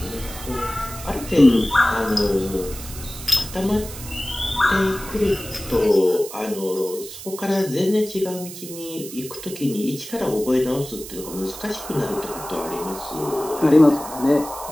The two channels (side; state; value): right; noise; hiss, 12 dB below the sound